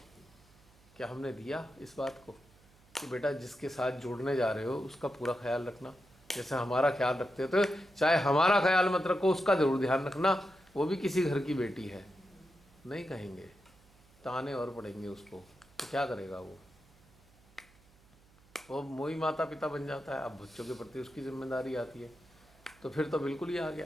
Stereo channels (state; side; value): noise; right; hum, 28 dB below the sound